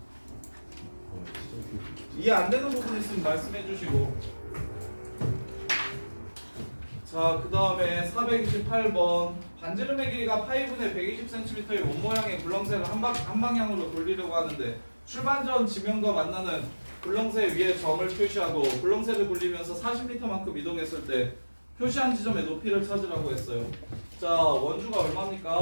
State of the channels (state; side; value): inverted; both; correlation -1.00